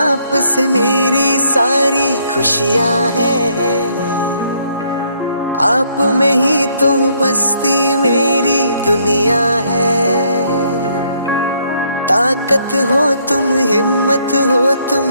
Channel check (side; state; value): both; inverted; correlation -0.70